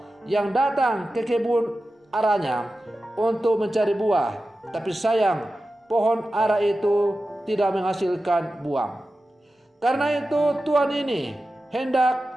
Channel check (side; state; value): both; normal; correlation 0.93